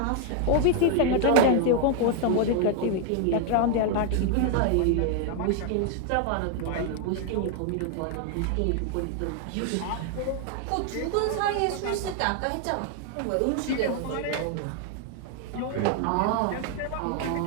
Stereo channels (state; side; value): different; both; correlation 0.00